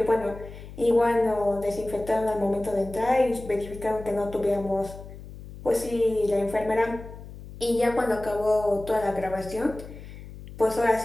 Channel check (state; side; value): noise; left; hum, 14 dB below the sound